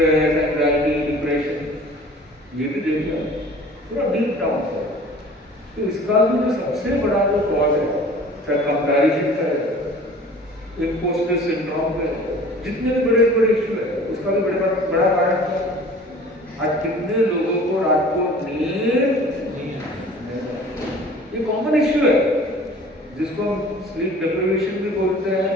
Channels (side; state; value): both; normal; correlation 0.46